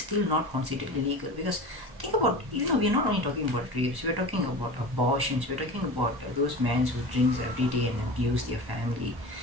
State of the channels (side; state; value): left; late; 1.1 ms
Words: not considered illegal. Because think about, we're not only talking about rapes, we're talking about abortions, we're talking about those men who drinks every day and abuse their family.